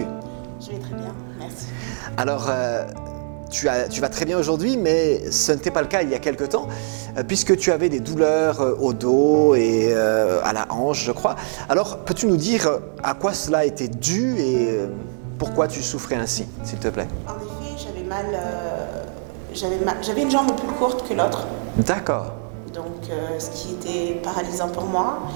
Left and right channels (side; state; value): left; silent; digital silence